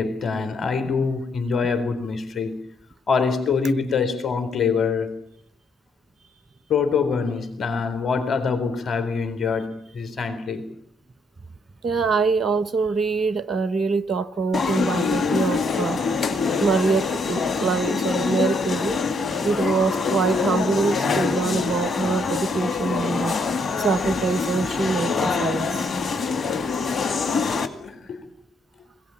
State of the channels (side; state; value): both; normal; correlation 0.72